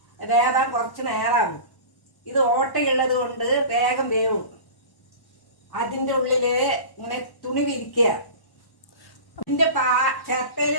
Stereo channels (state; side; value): late; right; 1.1 ms